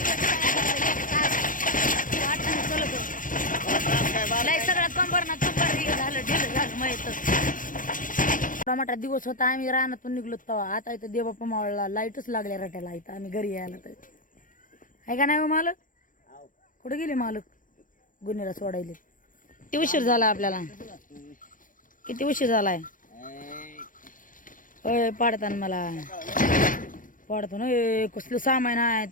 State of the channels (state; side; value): late; right; 0.39 ms